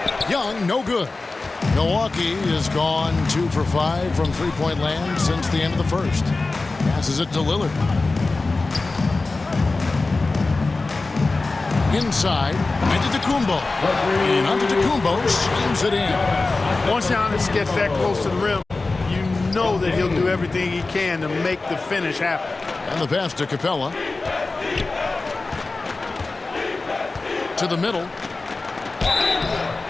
Young, no good. Milwaukee has gone 2 for 5 from three-point land since the end of the first. Passes it to Lillard. Inside, Antetokounmpo. And Antetokounmpo slams it in. Once Giannis gets that close to the rim, you know that he'll do everything he can to make the finish happen. And the pass to Capella. To the middle.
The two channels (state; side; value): quieter; right; 3.5 dB